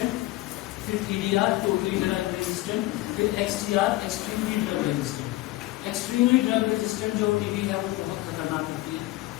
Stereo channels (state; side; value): quieter; right; 18.2 dB